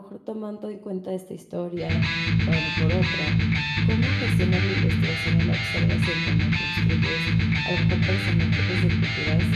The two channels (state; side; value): identical; both; correlation 1.00